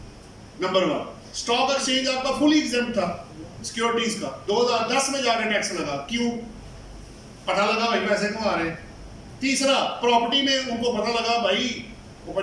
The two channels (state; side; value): identical; both; correlation 1.00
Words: नंबर 1, स्टॉक एक्सचेंज आपका फुली एग्जेम्प्ट था सिक्योरिटीज का, 2010 में जाकर टैक्स लगा, क्यों? पता लगा भाई पैसे कमा रहे हैं। तीसरा, प्रॉपर्टी में उनको पता लगा भाई, वो